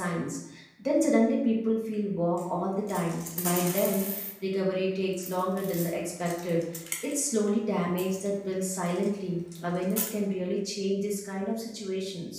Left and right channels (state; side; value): identical; both; correlation 1.00